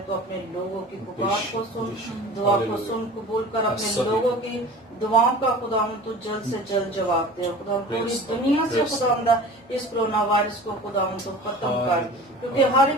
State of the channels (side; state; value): both; normal; correlation 0.39